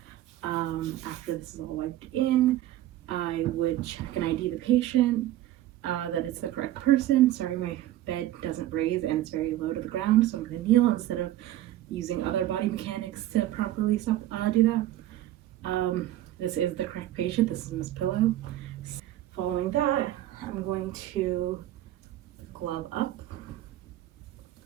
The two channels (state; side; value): quieter; left; 14.0 dB